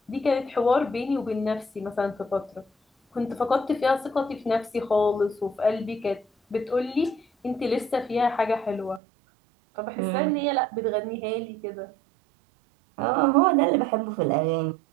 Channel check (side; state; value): left; drops out; at 9.0 s